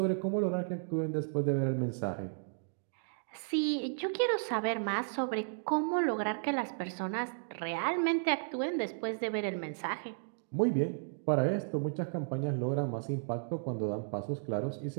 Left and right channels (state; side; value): silent; left; digital silence